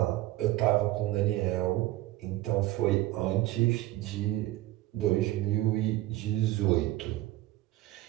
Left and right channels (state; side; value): quieter; left; 16.5 dB